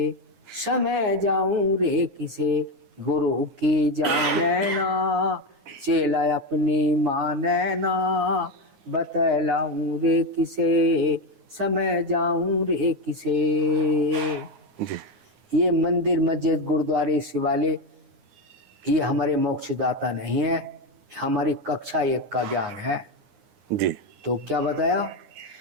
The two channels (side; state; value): left; late; 9.6 ms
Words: समय जाऊं रे किसे। गुरु की जाने ना चेला अपनी माने ना, बतलाऊं रे किसे समय जाऊं रे किसे। जी ये मंदिर मस्जिद गुरुद्वारे शिवालय ये हमारे मोक्षदाता नहीं है, हमारी कक्षा 1 का ज्ञान है। जी तो क्या बताया,